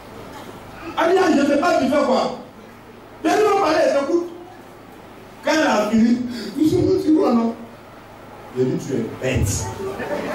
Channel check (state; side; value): identical; both; correlation 1.00